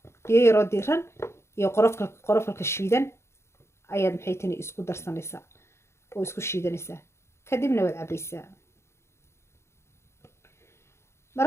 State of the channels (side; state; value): right; late; 0.13 ms